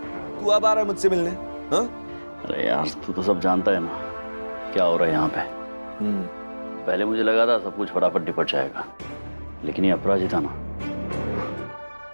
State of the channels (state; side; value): inverted; both; correlation -1.00